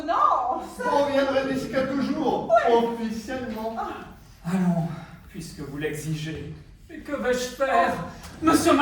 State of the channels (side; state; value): both; identical; correlation 1.00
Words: On reviendrait d'ici quelques jours, officiellement. Allons, puisque vous l'exigez. Mais que vais-je faire? Monsieur